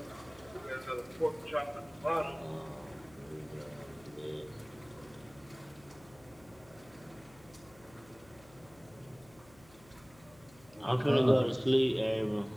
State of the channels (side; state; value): left; noise; hum, 24 dB below the sound